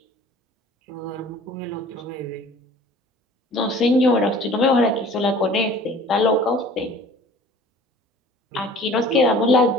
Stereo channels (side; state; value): both; normal; correlation 0.48